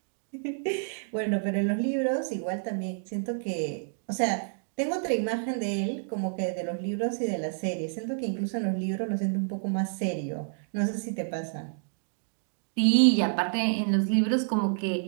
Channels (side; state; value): left; silent; digital silence